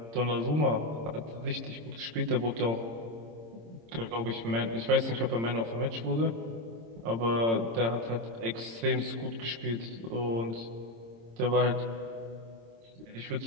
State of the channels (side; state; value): left; late; 26 ms